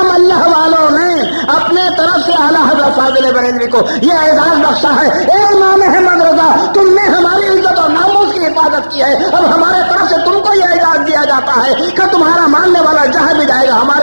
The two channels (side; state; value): both; inverted; correlation -1.00